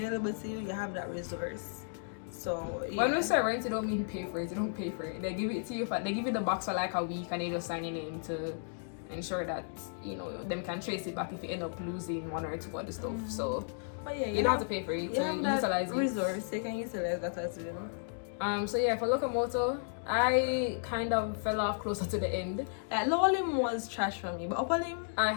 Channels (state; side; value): silent; right; digital silence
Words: to you. You have that resource. So when we say rent, you don't mean pay for it. You don't pay for it. They give it to you. They give you the box for a week, and they just sign your name to ensure that them can trace it back if you end up losing 1 or 2 other stuff. So you don't have to pay for it. So utilize it. Resource. You can utilize that as well. So for Locomotor, I kind of fell off closer to the end. Lower limb was trash for me, but upper limb, I